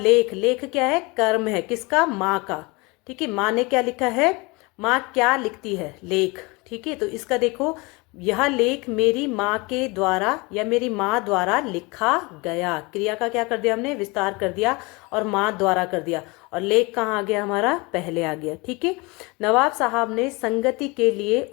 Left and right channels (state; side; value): quieter; right; 26.1 dB